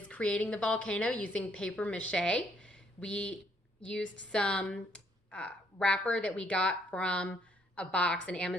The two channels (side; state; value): both; normal; correlation 0.69